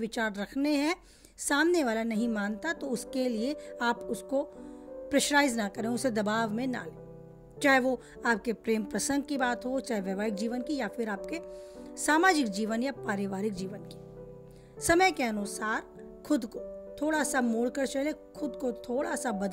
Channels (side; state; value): both; identical; correlation 1.00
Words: रखने हैं। सामने वाला नहीं मानता तो उसके लिए आप उसको प्रेशराइज ना करें, उसे दबाव में ना लें। चाहे वो आपके प्रेम प्रसंग की बात हो, चाहे वैवाहिक जीवन की, या फिर आपके सामाजिक जीवन या पारिवारिक जीवन की। समय के अनुसार खुद को थोड़ा सा मोड़ कर चले, खुद को थोड़ा सा